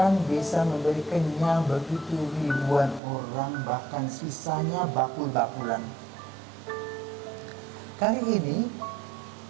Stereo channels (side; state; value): left; drops out; at 3.0 s